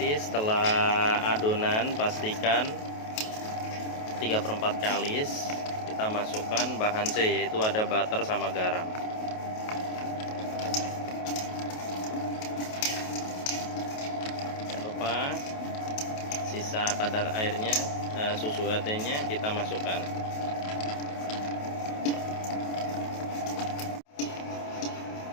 setelah adonan pastikan 3/4 kalis kita masukkan bahan C, yaitu ada butter sama garam. Jangan lupa sisa kadar airnya, susu UHT-nya kita masukkan.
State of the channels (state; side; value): late; right; 28 ms